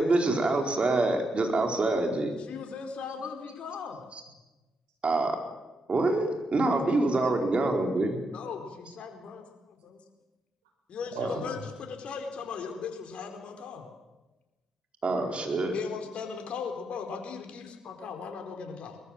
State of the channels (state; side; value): normal; both; correlation 0.81